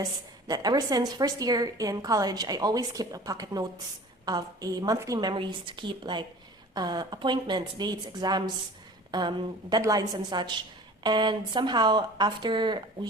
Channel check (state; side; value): normal; both; correlation 0.43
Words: that ever since first year in college, I always keep a pocket notes of a monthly memories to keep like appointments, dates, exams, deadlines and such. And somehow after